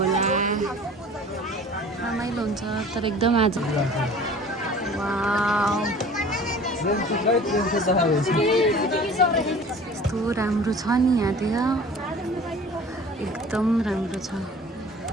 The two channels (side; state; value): both; normal; correlation 0.45